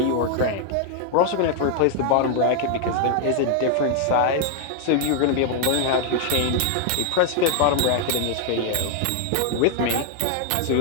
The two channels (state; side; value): different; both; correlation 0.00